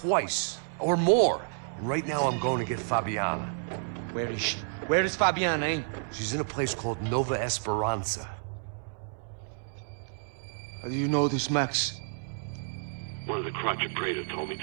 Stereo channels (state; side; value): silent; left; 56 dB below the other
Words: or more. And right now I'm going to get Fabiana. Where is she? Where is Fabiana, eh? She's in a place called Nova Esperanza. How do you know this, Max? One of the Crotch of Prado told me